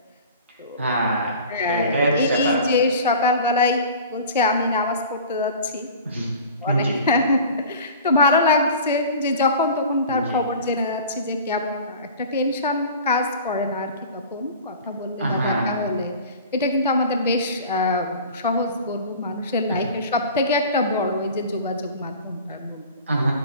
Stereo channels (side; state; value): both; inverted; correlation -0.40